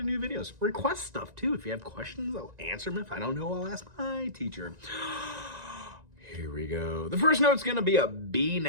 new videos. Request stuff too. If you have questions, I'll answer them. If I don't know, I'll ask my teacher. Here we go. The first note's going to be a B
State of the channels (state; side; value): late; left; 1.9 ms